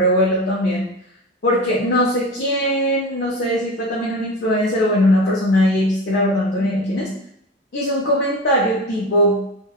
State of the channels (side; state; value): both; normal; correlation 0.28